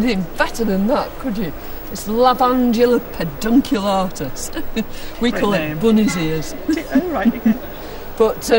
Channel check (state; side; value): identical; both; correlation 1.00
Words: better than that, could you? It's Lavandula pedunculatus. We call it bunny's ears. Oh, right. But